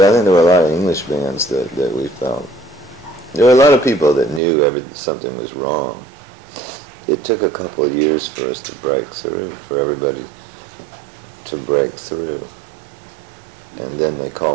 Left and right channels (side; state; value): left; drops out; at 4.4 s